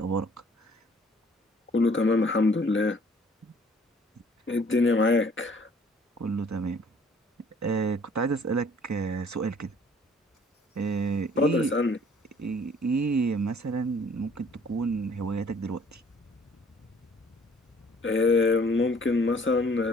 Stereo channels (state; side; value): normal; both; correlation 0.57